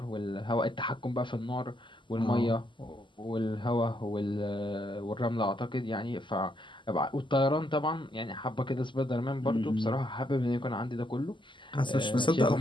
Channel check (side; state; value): right; late; 0.24 ms